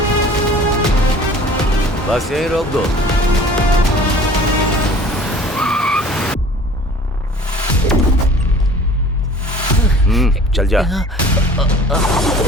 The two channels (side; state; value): both; normal; correlation 0.47